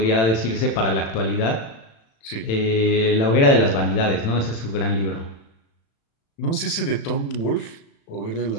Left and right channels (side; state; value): right; late; 35 ms